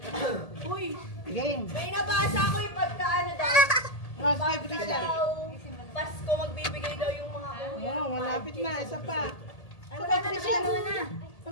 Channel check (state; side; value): late; right; 1.8 ms